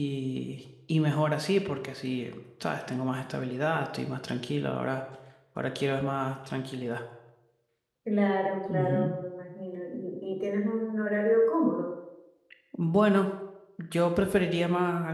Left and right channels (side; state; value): both; identical; correlation 1.00